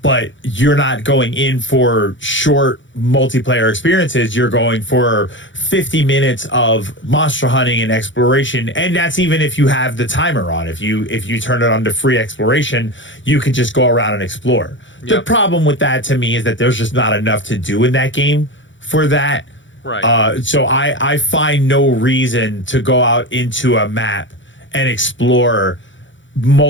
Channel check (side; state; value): right; late; 0.55 ms